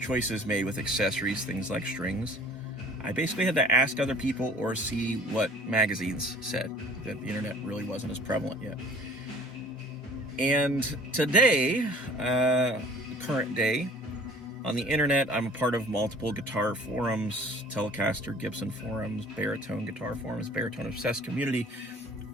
made with accessories, things like strings, I basically had to ask other people or see what magazines said. That the internet really wasn't as prevalent yet. And today, current day, on the internet, I'm a part of multiple guitar forums, Telecaster, Gibson forums, baritone guitar forums, baritone obsessed community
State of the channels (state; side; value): normal; both; correlation 0.49